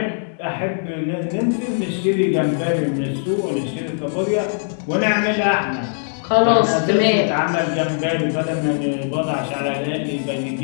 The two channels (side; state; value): right; silent; digital silence